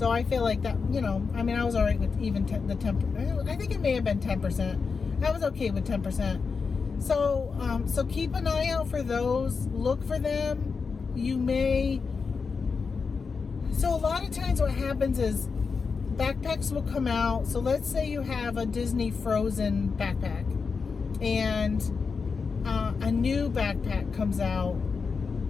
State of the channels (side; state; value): right; quieter; 5.1 dB